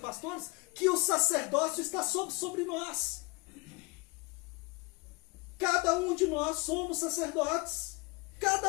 que o sacerdócio está sobre nós. Cada um de nós somos sacerdotes.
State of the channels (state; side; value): quieter; right; 27.1 dB